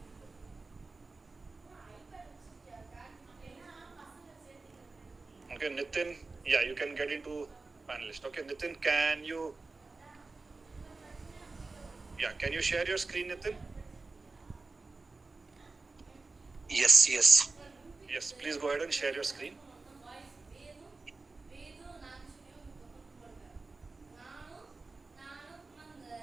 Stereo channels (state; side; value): quieter; left; 3.7 dB